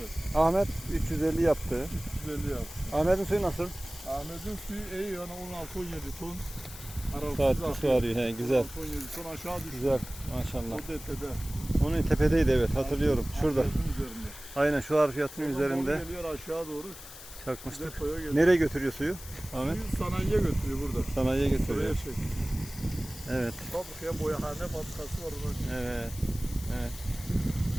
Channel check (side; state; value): left; noise; hiss, 15 dB below the sound